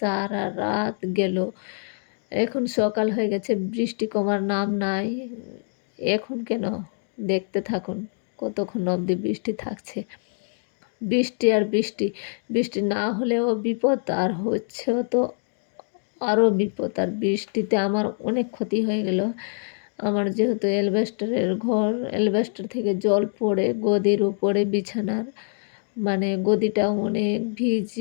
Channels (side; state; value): right; silent; 58 dB below the other